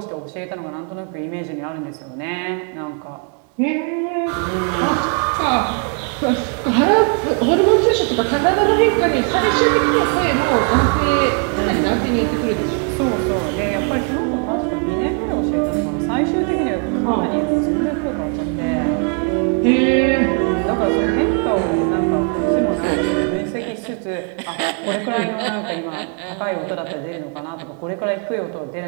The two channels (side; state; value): left; quieter; 38.3 dB